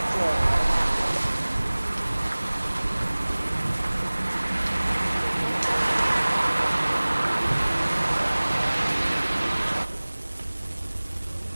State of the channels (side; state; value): both; inverted; correlation -1.00